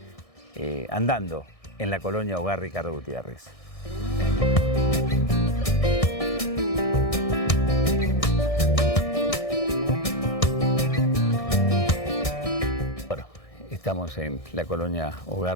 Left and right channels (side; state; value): right; late; 1.6 ms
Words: andando en la Colonia Hogar Ricardo Gutiérrez. Estamos en la Colonia